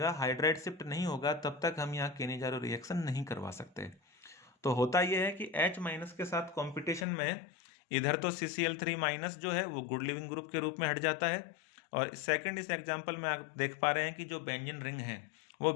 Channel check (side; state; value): right; drops out; at 7.1 s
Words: हाइड्राइड शिफ्ट नहीं होगा, तब तक हम यहाँ केनेजारो रिएक्शन नहीं करवा सकते। तो होता यह है कि H माइनस के साथ कंपटीशन में इधर तो CCl3 माइनस जो है वो गुड लिविंग ग्रुप के रूप में हट जाता है, और सेकंड इस एग्जांपल में आप देख पा रहे हैं कि जो बेंजीन रिंग है वो